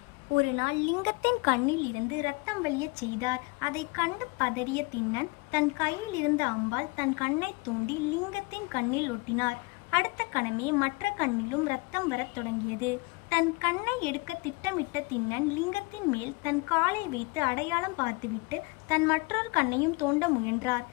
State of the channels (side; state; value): right; quieter; 26.6 dB